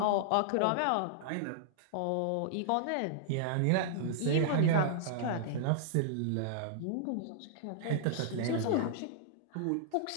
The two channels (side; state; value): both; different; correlation -0.01